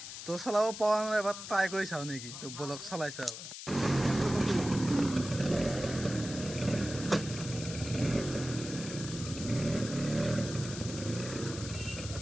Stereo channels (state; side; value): noise; left; hiss, 10 dB below the sound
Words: তো চলাব পৰা নাই এবাৰ ট্ৰাই কৰি চাওঁ নেকি তো বলক চলাই চাওঁ